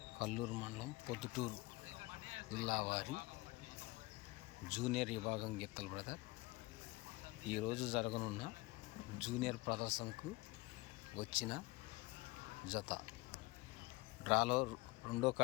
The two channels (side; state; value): right; quieter; 22.1 dB